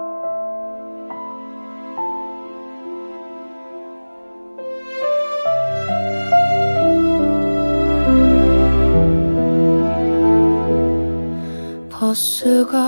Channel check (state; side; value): inverted; both; correlation -1.00